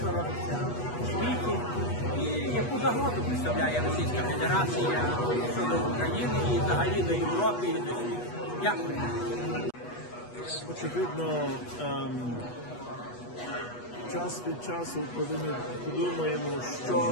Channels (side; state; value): right; late; 8.2 ms